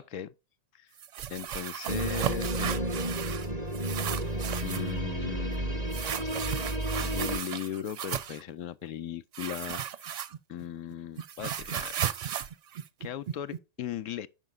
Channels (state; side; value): late; left; 1.9 ms